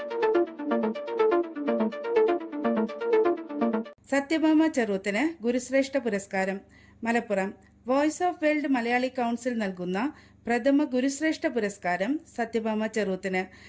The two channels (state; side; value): identical; both; correlation 1.00